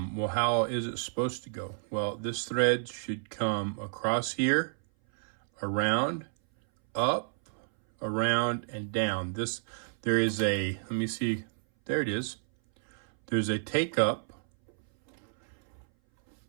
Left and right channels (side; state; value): left; silent; 57 dB below the other